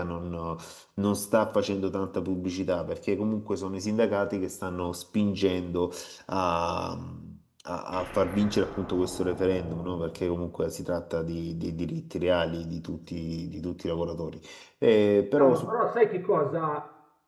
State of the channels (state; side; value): identical; both; correlation 1.00